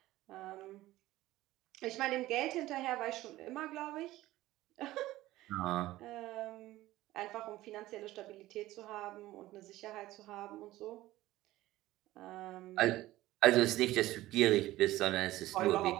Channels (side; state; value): left; quieter; 16.5 dB